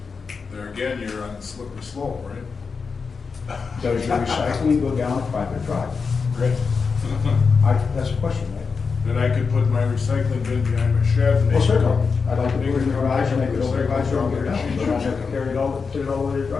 there again, you're on slippery slope, right? Does your recycling go down a private drive? Right. That's a question, right? Then I could put my recycling bin behind my shed and Well, make it certainly. up. I'd like to put it in the garage and make it over the garage door and get it out. You don't have to carry it all, put it all over your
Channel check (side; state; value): right; quieter; 5.1 dB